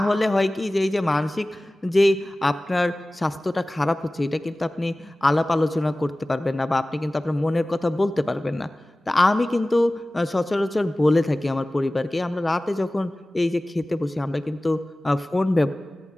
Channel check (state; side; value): normal; both; correlation 0.97